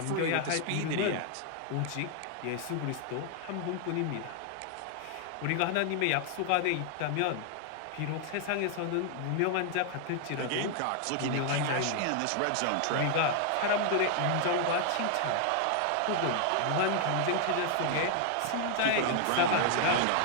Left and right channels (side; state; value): both; different; correlation 0.00